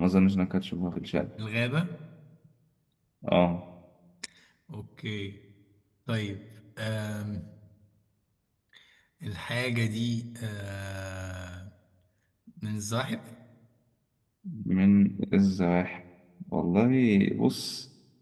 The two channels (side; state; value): both; identical; correlation 1.00